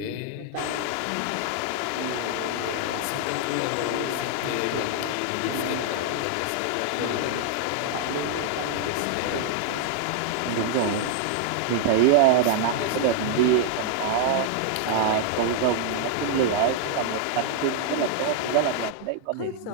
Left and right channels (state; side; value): different; both; correlation -0.01